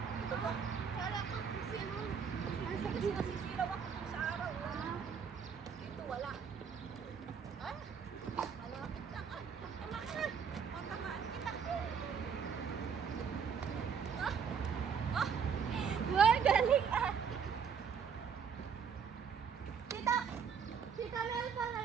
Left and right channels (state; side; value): quieter; left; 6.7 dB